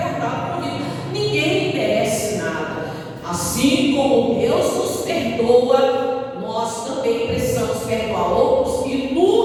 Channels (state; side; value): identical; both; correlation 1.00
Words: com vida. Ninguém merece nada. Assim como Deus nos perdoa, nós também precisamos perdoar outros. E